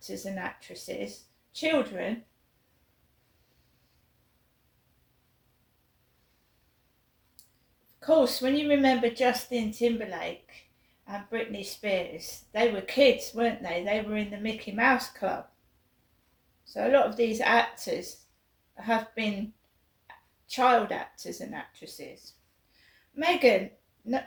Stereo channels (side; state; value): both; identical; correlation 1.00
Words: and actresses, children. Of course, when you remember Justin Timberlake and Britney Spears, they were kids, weren't they? They were in the Mickey Mouse Club. So a lot of these actors have been child actors and actresses. Megan,